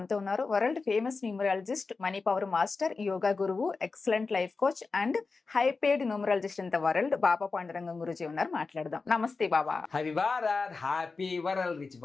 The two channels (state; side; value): quieter; right; 4.2 dB